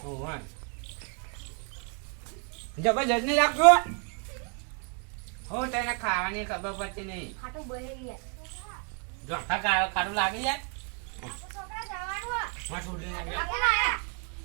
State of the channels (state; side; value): quieter; left; 39.1 dB